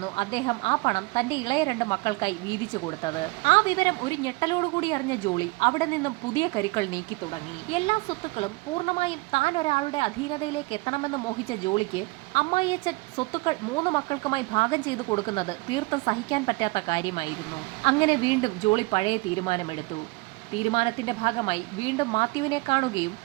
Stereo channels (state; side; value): quieter; left; 25.5 dB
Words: അദ്ദേഹം ആ പണം തന്റെ ഇളയ 2 മക്കൾക്കായി വീതിച്ചു കൊടുത്തത്. ആ വിവരം ഒരു ഞെട്ടലോടുകൂടി അറിഞ്ഞ ജോളി അവിടെ നിന്നും പുതിയ കരുക്കൾ നീക്കി തുടങ്ങി. എല്ലാ സ്വത്തുക്കളും പൂർണ്ണമായും താൻ ഒരാളുടെ അധീനതയിലേക്ക് എത്തണമെന്ന് മോഹിച്ച ജോളിക്ക് അമ്മായിയച്ഛൻ സ്വത്തുക്കൾ 3 മക്കൾക്കുമായി ഭാഗം ചെയ്തു കൊടുക്കുന്നത് തീർത്തും സഹിക്കാൻ പറ്റാത്ത കാര്യമായിരുന്നു. അങ്ങനെ വീണ്ടും ജോളി പഴയ തീരുമാനമെടുത്തു. തീരുമാനത്തിന്റെ ഭാഗമായി വീണ്ടും മാത്യുവിനെ കാണുകയും